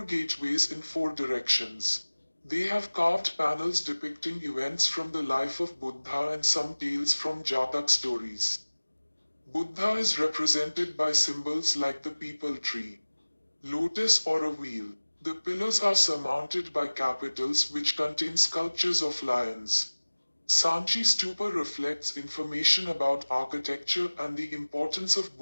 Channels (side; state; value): both; inverted; correlation -1.00